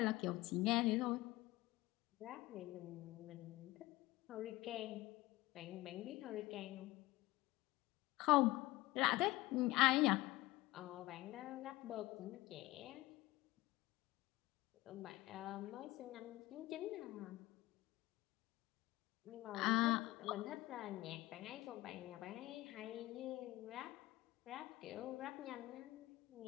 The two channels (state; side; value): quieter; right; 18.8 dB